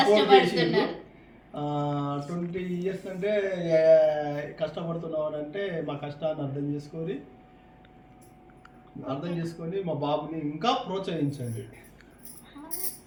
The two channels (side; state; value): both; identical; correlation 1.00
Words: 20 years అంటే కష్టపడుతున్నావు అంటే మా కష్టాన్ని అర్థం చేసుకొని మా బాబుని ఇంకా ప్రోత్సహించండి.